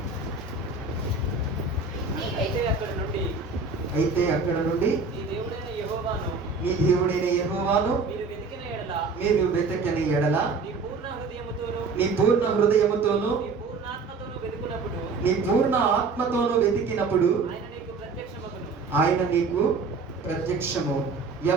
అయితే అక్కడ నుండి నీ దేవుడైన యెహోవాను నీ దేవుడైన యెహోవాను మీరు వెతికిన ఎడల మీరు వెతకని ఎడల నీ పూర్ణ హృదయముతోను నీ పూర్ణ హృదయముతోను నీ పూర్ణాత్మతోను వెతుకున్నప్పుడు నీ పూర్ణ ఆత్మతోను వెతికినప్పుడు ఆయన నీకు ప్రత్యక్షమగును. ఆయన నీకు ప్రత్యక్షము.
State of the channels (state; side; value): quieter; left; 4.3 dB